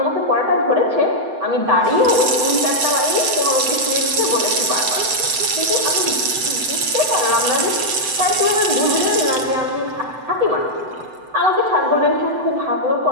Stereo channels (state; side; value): late; left; 7.8 ms